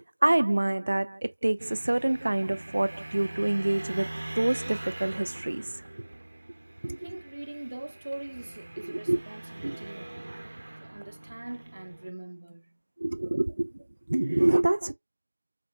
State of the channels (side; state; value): both; inverted; correlation -1.00